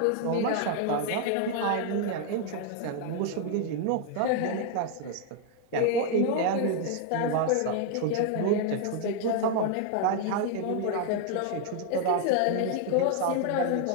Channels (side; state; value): both; different; correlation 0.00